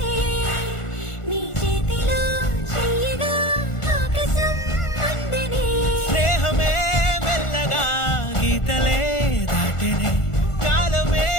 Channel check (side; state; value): right; late; 1.4 ms